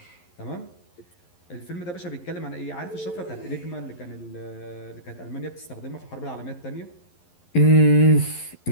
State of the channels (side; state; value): right; late; 11 ms